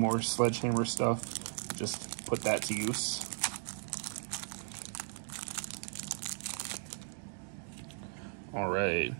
more Sledgehammer stuff. Just put that to use. Alright.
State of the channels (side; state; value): left; silent; digital silence